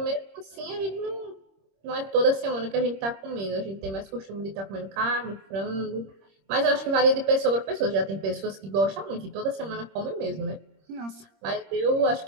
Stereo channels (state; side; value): late; left; 26 ms